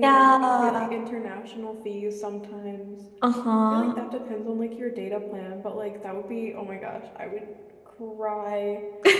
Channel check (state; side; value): identical; both; correlation 1.00